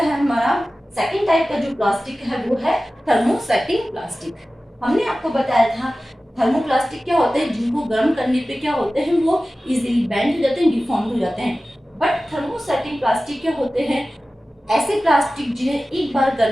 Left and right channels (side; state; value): both; normal; correlation 0.96